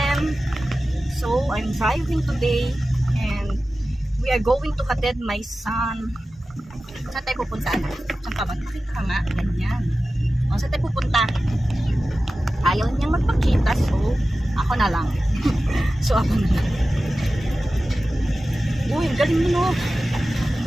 So, I'm driving today and we are going to hatid my son. Saan tayo pupunta? Saan ka ba? Pakita ka nga. Ganyan. Saan tayo pupunta? Ayaw niyang magpakita, so ako na lang. So ako na lang. Uy, ang galing mo, no?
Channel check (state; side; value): normal; both; correlation 0.95